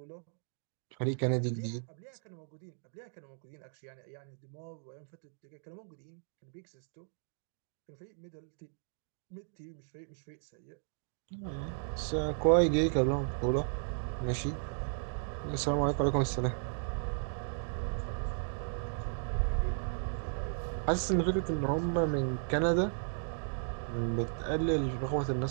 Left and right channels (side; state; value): left; silent; digital silence